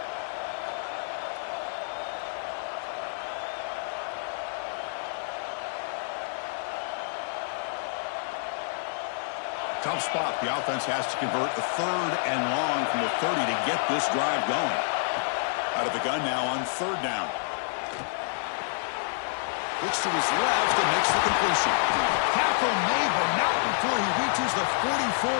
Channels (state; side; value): silent; right; digital silence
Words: Tough spot. The offense has to convert a 3rd and long from the 30 to get this drive going. Out of the gun now on 3rd down. Looks to his left and makes the completion. Tackle made, but not before he reaches the 44.